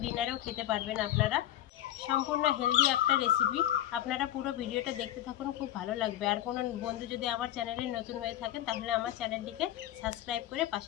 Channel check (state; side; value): quieter; right; 13.0 dB